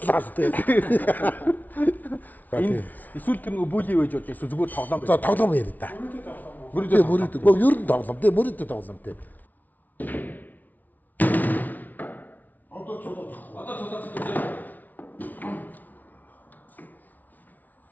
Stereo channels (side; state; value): right; late; 0.078 ms